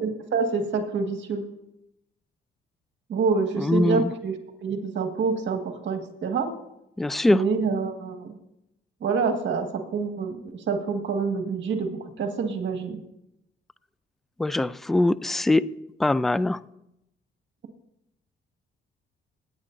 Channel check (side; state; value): both; normal; correlation 0.60